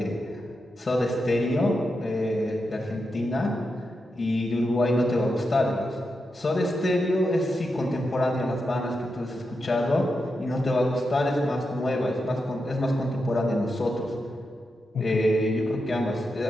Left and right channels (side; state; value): both; normal; correlation 0.87